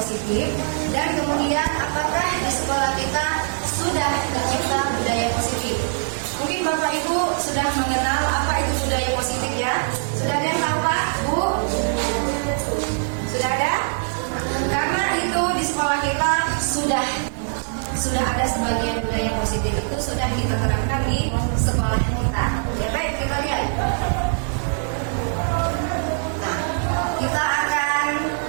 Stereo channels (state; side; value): silent; left; digital silence